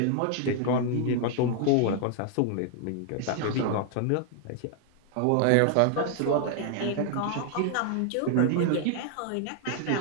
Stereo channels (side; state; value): both; different; correlation 0.00